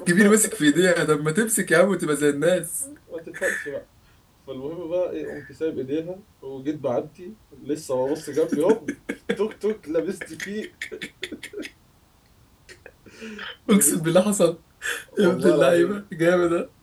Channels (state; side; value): identical; both; correlation 1.00